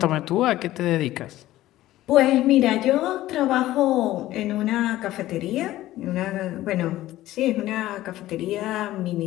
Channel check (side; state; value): right; quieter; 15.3 dB